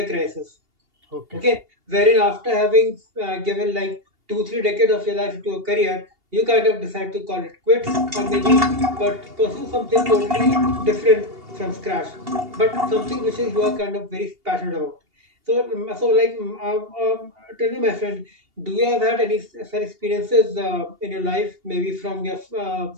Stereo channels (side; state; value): left; late; 2.8 ms